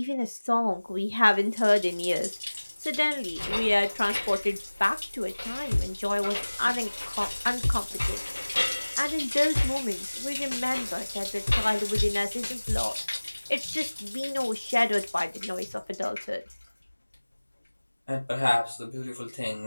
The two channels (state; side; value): inverted; both; correlation -1.00